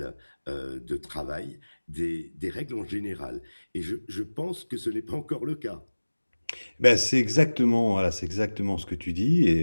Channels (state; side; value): inverted; both; correlation -1.00